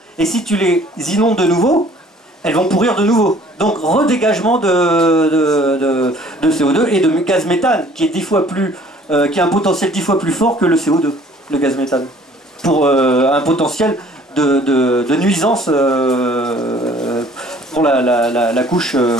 Et si tu les inondes de nouveau, elles vont pourrir de nouveau. Donc redégagement de CO2 et de gaz méthane, qui est 10 fois plus, qui a un potentiel 10 fois plus fort que le CO2, le gaz méthane, pour un potentiel de nuisance pour la couche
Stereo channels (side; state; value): both; normal; correlation 0.55